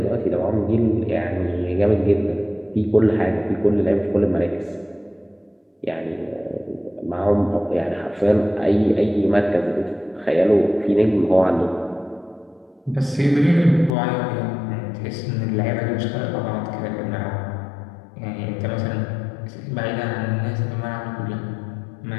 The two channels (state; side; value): drops out; right; at 13.9 s